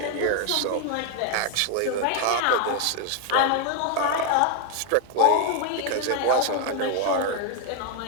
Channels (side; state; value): both; different; correlation 0.01